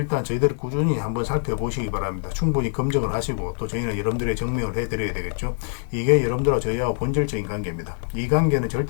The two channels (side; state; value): right; silent; digital silence